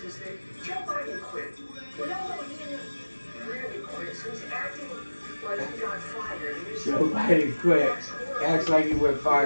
is that Joe Biden quit. We all know he didn't really quit, so he's acting like he got fired. Joe Biden quit. Acts like he went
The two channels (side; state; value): both; inverted; correlation -1.00